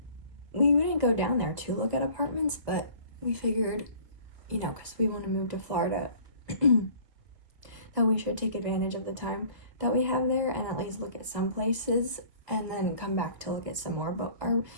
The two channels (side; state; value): left; late; 1.6 ms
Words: we didn't go down there to look at apartments, but we figured, because we want to move to Florida, that we should take advantage of the time that we have there and at least look at some places and then come back to look at some more. But our